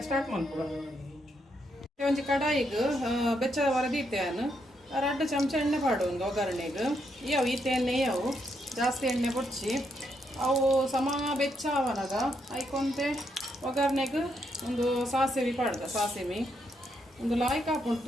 ಸ್ಟಾರ್ಟ್ ಮಾಡ್ಕೊಡ ಒಂಜಿ ಕಡಾಯಿಗೆ ಬೆಚ್ಚದ ವರದೀತೇನು 2 ಚಮಚ ಎಣ್ಣೆ ಪಾಡು ಒಂದು ಒಗ್ಗರಣೆಗೆ ಇವು ಈತೆ ಎಣ್ಣೆ ಅವು ಜಾಸ್ತಿ ಎಣ್ಣೆ ಬೊಚ್ಚಿ ಅವು ಸಮ ಬೆಚ್ಚ ಅವನಾಗ ಐಕೊಂತೆ ಒಗ್ಗರಣೆಗೆ ಒಂದು ಸಾಸಿವೆ ಪಾಡ್ದ ಸಾಸಿವೆ ಒಂದು ಲಾಯ್ಕ್ ಹಾಕೊಂಡು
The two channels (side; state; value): both; normal; correlation 0.78